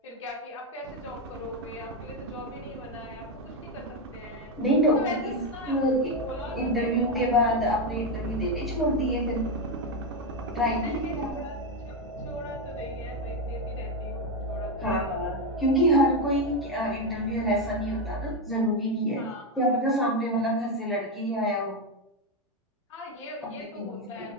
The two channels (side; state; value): both; normal; correlation 0.08